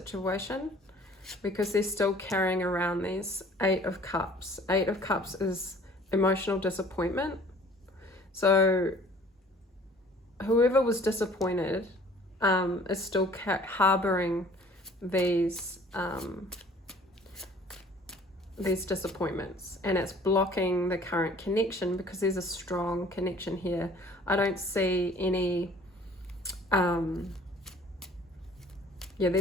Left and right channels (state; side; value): normal; both; correlation 0.52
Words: because they're still carrying around these 8 of Cups. 8 of Cups is emotional disappointment. So whoever was disappointed is still harboring these these disappointments, and it's blocking the current connection because there's a strong connection here. I don't see any,